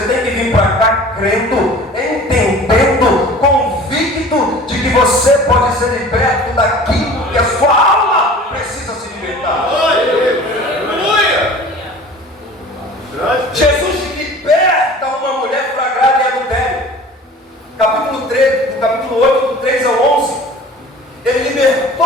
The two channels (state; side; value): normal; both; correlation 0.43